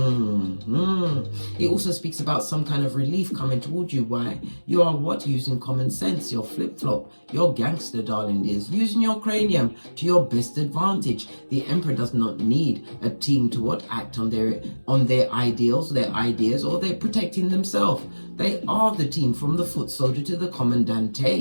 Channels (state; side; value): inverted; both; correlation -1.00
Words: It also speaks about some kind of relief coming towards you. Why? You are what? Using common sense, your flip-flop, your gangster, darling dears. Using your cranium to your best advantage. The Emperor does not need a team to what? Act on their ideals, their ideas, or they're protecting themselves. They are the team, from the foot soldier to the